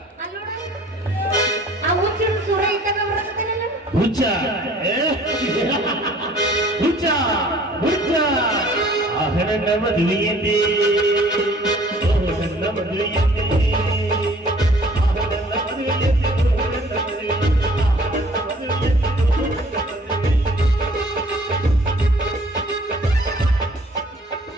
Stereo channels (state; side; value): normal; both; correlation 0.54